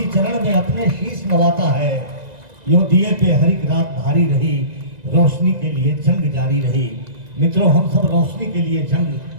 चरण में अपने शीश नवाता है। यूं दिए पे हरिक रात भारी रही, रोशनी के लिए जंग जारी रही। मित्रों, हम सब रोशनी के लिए जंग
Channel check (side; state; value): left; late; 1.9 ms